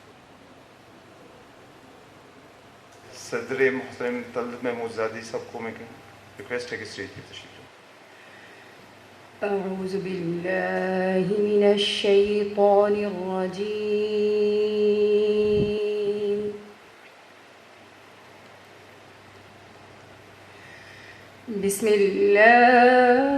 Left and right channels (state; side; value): identical; both; correlation 1.00